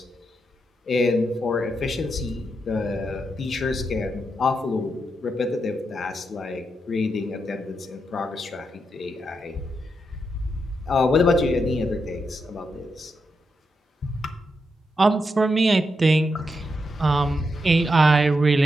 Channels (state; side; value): normal; both; correlation 0.84